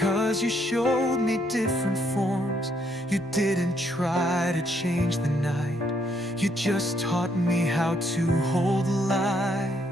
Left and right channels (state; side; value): normal; both; correlation 0.71